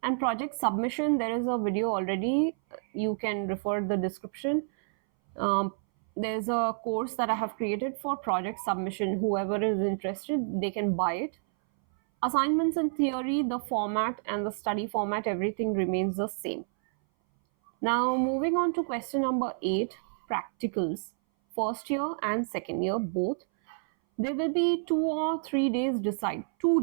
and project submission, there is a video already. You can refer the description. um, there's a course that I have created for project submission. Whoever is interested, they can buy it. Assignments in theory, the format and the study format, everything remains the same. Now, moving on to question number 8, practicals. First year and second year both. There will be 2 or 3 days decide.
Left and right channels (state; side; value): silent; left; 58 dB below the other